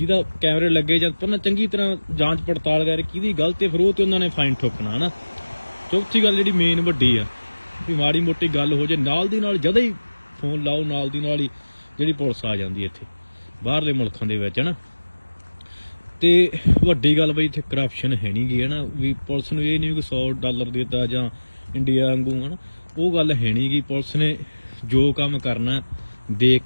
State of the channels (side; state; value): both; inverted; correlation -1.00